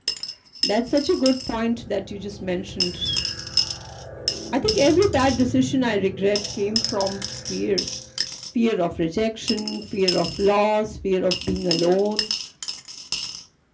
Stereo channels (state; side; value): identical; both; correlation 1.00